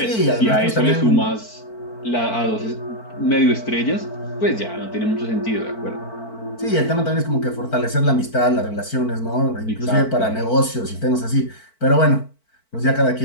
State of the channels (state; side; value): late; right; 4.5 ms